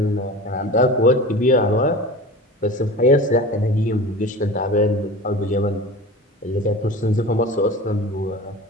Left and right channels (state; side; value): normal; both; correlation 0.34